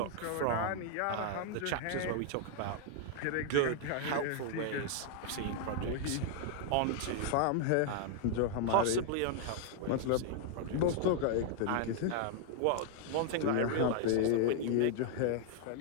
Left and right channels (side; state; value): both; different; correlation 0.00